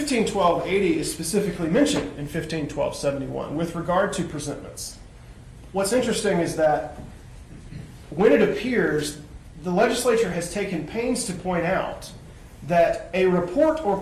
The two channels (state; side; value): identical; both; correlation 1.00